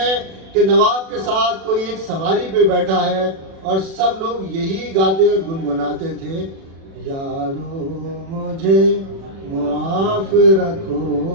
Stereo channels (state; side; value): late; left; 36 ms